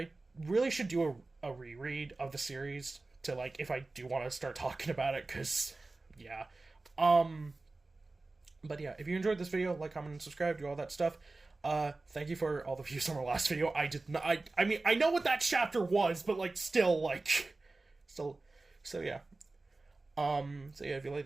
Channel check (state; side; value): quieter; left; 3.3 dB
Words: really should do a reread of the series to, like, if I do want to start talking about it, because, yeah. But yeah, if you enjoyed this video, like, comment, and subscribe, do all that stuff. Thank you for all the views on our last video. I did not, I mean, I know what that chapter was, but, like, still, so yeah. So yeah, if you like